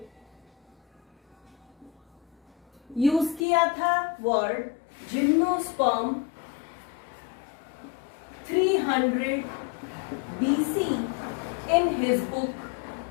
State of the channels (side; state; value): right; drops out; at 3.4 s